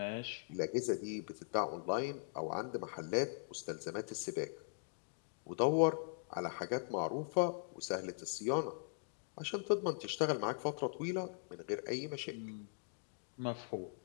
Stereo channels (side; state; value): right; silent; digital silence